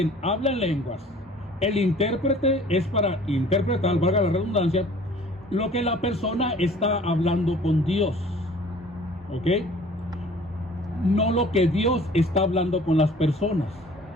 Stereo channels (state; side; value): normal; both; correlation 0.50